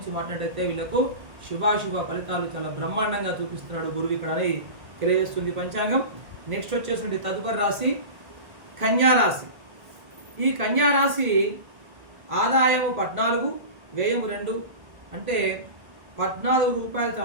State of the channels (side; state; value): left; late; 1.5 ms